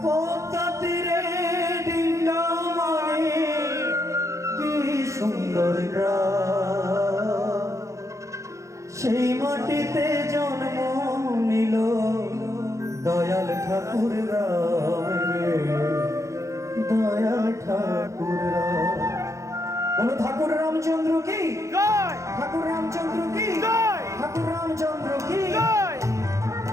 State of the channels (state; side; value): late; left; 0.15 ms